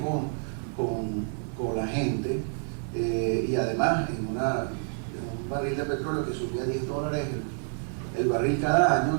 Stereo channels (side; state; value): left; silent; 59 dB below the other